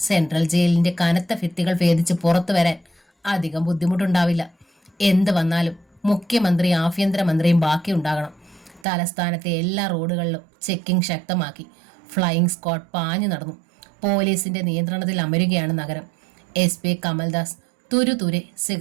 സെൻട്രൽ ജയിലിന്റെ കനത്ത ഭിത്തികൾ ഭേദിച്ച് പുറത്തു വരാൻ അധികം ബുദ്ധിമുട്ടുണ്ടാവില്ല. എന്ത് വന്നാലും മുഖ്യമന്ത്രി ആഭ്യന്തരമന്ത്രിയും ബാക്കിയുണ്ടാകണം. തലസ്ഥാനത്തെ എല്ലാ റോഡുകളിലും ചെക്കിംഗ് ശക്തമാക്കി. ഫ്ലൈയിങ് സ്ക്വാഡ് പാഞ്ഞു നടന്നു. പോലീസിന്റെ നിയന്ത്രണത്തിൽ അമരുകയാണ് നഗരം. SP കമൽദാസ് തുരുതുരെ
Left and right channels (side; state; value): left; drops out; at 8.8 s